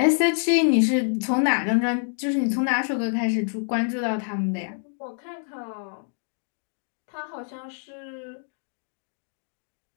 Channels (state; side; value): silent; right; 61 dB below the other